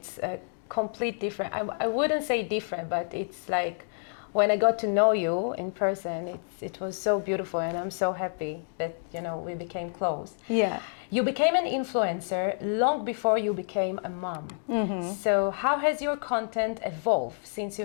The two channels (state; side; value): silent; right; digital silence